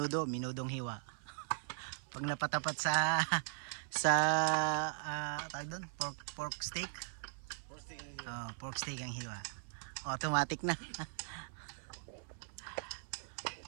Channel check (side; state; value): left; silent; 51 dB below the other